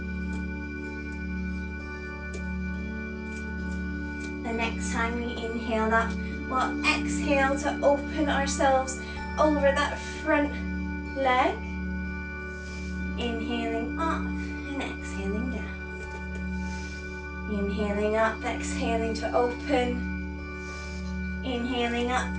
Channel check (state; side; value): identical; both; correlation 1.00